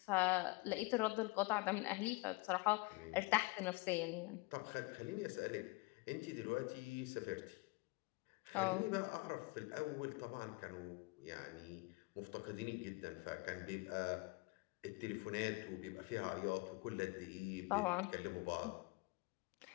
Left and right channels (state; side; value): quieter; right; 25.2 dB